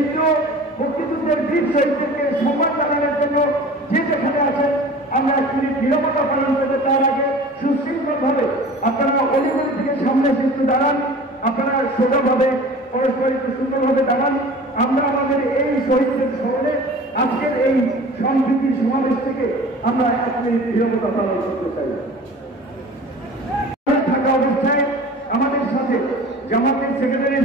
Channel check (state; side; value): normal; both; correlation 0.41